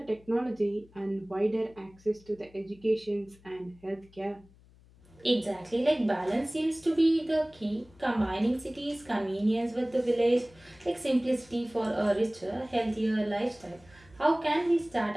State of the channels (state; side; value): noise; left; hum, 27 dB below the sound